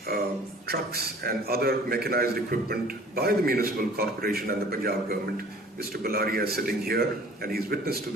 trucks and other mechanized equipment by the municipal corporation and the Punjab government. Mr. Balaria is sitting here, and he's witness to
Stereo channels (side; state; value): both; normal; correlation 0.49